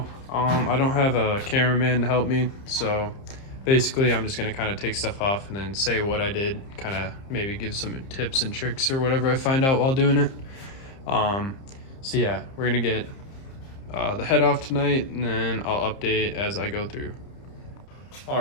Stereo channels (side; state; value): right; late; 30 ms